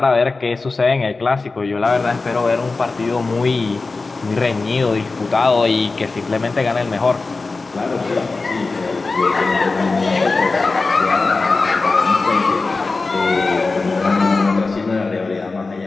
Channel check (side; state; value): right; quieter; 3.8 dB